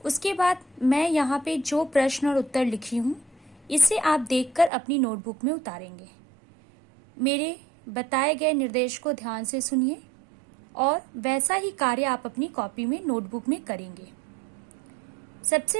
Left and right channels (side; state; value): left; drops out; at 4.7 s